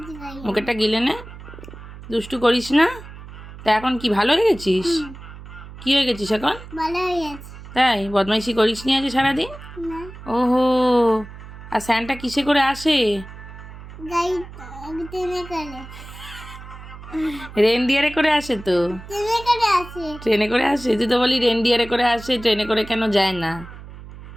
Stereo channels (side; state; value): right; noise; hum, 15 dB below the sound